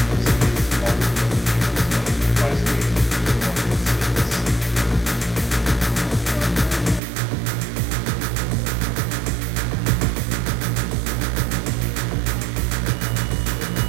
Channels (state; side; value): drops out; left; at 7.0 s